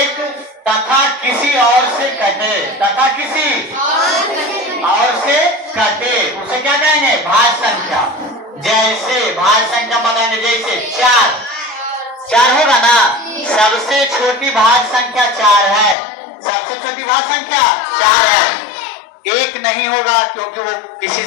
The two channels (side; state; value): right; drops out; at 16.0 s